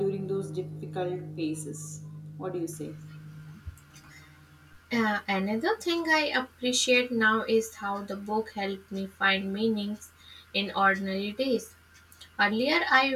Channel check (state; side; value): identical; both; correlation 1.00